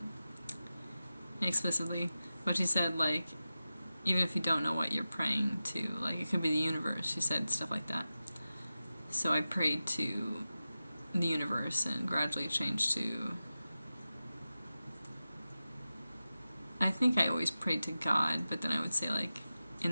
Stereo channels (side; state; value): both; inverted; correlation -0.94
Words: explicitly, but she said, like, even if you don't know what you're praying to, like, it could be the universe. She said stuff like that. So I prayed to the universe and gradually changed to, I think I always prayed to God, but then I would say, like,